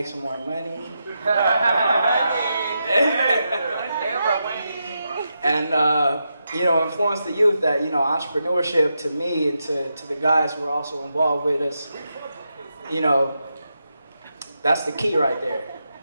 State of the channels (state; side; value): inverted; both; correlation -0.86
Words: some more money. And influence the youth that, entrepreneurship to me and to the guys who are also involved with us, that's the key right there.